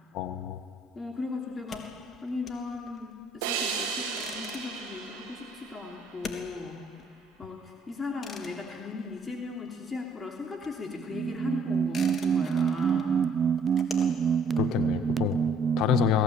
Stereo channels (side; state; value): both; normal; correlation 0.61